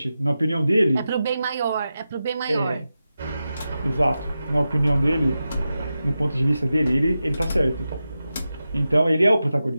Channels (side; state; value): both; inverted; correlation -0.91